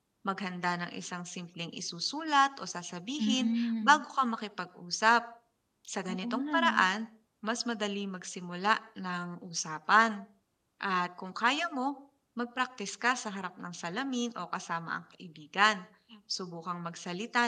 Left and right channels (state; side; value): identical; both; correlation 1.00